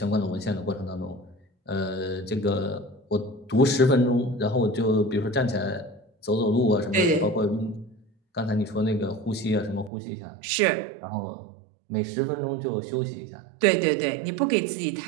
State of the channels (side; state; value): left; drops out; at 9.9 s